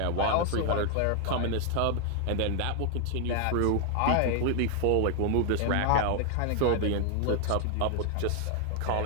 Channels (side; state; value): both; different; correlation 0.00